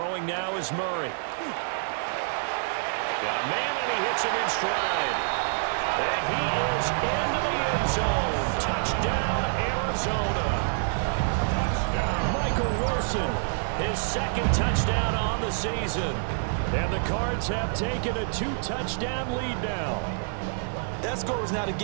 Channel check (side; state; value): left; silent; 58 dB below the other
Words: now is Murray. Got a man, and he hits him in stride. And he is into the end zone. Touchdown, Arizona. Michael Wilson, his 2nd touchdown on the season. And the Cards have taken a 2-touchdown lead now. That score was not a